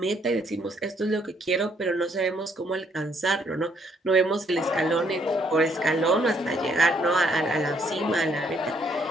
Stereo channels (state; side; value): normal; both; correlation 0.69